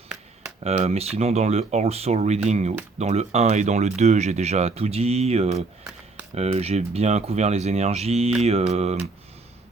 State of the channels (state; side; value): quieter; left; 3.7 dB